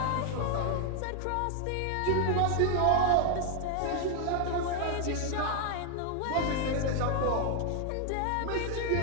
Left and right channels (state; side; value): different; both; correlation 0.00